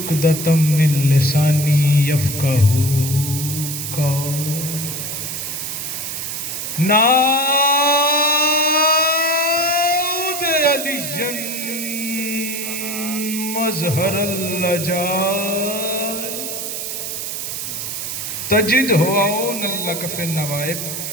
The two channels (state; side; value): noise; right; hiss, 5 dB below the sound